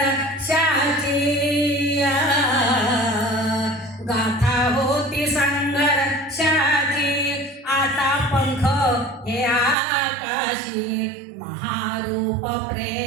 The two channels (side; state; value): left; drops out; at 9.8 s